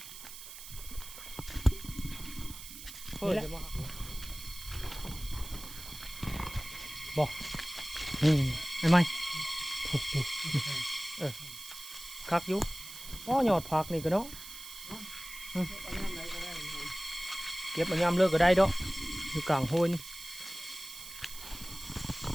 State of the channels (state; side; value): noise; right; hiss, 12 dB below the sound